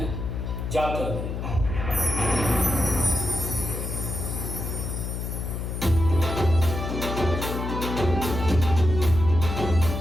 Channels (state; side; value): noise; left; hum, 4 dB below the sound